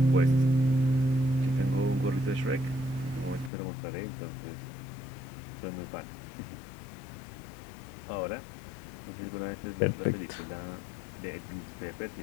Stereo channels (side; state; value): right; drops out; at 3.5 s